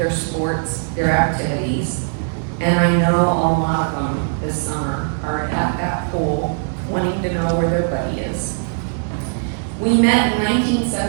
sports, their activities. And I know a lot of them this summer are at that pool wanting to know where their buddy is. We met in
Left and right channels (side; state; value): left; silent; digital silence